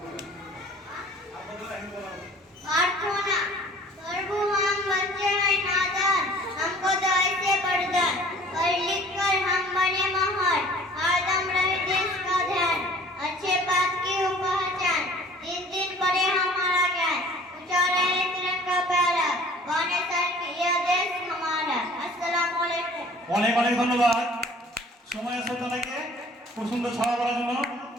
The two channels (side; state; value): both; normal; correlation 0.50